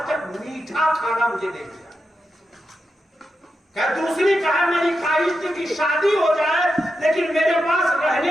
تک میٹھا کھانا مجھے نہیں ملا. کہ دوسری کہا میری خواہش تھی کہ شادی ہو جائے لیکن میرے پاس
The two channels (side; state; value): both; normal; correlation 0.88